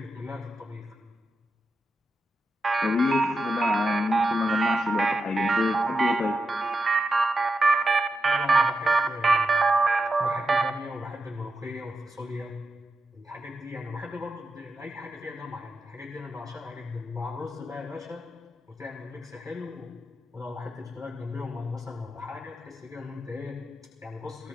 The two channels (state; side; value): normal; both; correlation 0.87